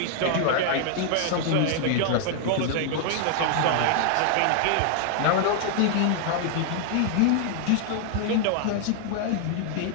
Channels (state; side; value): different; both; correlation 0.00